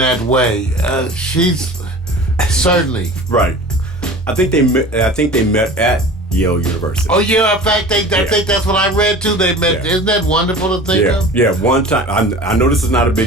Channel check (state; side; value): normal; both; correlation 0.39